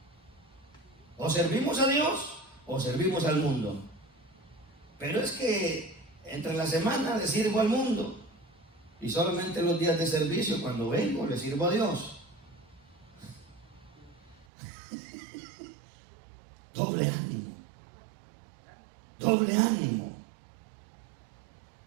O servimos a Dios o servimos al mundo. Pero es que entre la semana le sirvo al mundo. Y solamente los días de servicio, cuando vengo, le sirvo a Dios. Doble ánimo. Doble ánimo.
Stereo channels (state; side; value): drops out; left; at 14.5 s